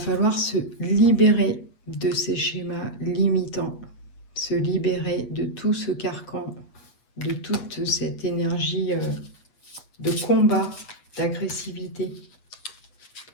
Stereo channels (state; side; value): late; right; 8.3 ms